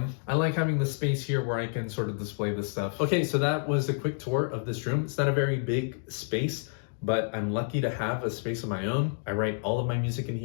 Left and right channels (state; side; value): silent; right; digital silence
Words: I like having the space here where I can sort of display this stuff. Okay, so that was a quick tour of this room. It's not a very big space, but I'm lucky to have a space of my own. I write all of my music in